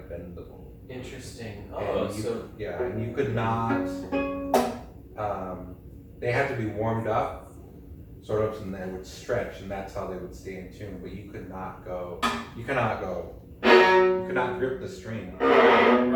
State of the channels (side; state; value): both; identical; correlation 1.00